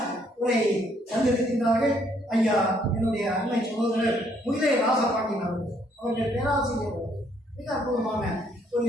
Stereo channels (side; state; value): both; normal; correlation 0.68